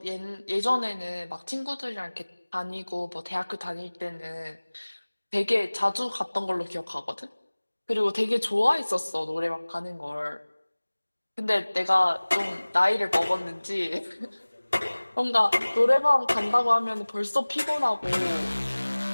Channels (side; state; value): both; inverted; correlation -1.00